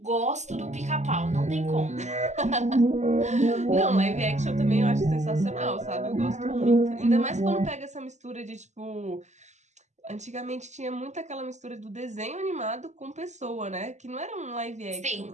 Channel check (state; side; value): late; left; 0.34 ms